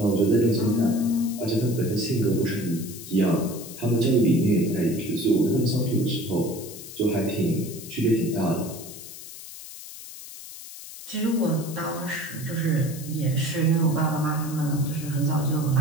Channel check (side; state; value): left; noise; hiss, 14 dB below the sound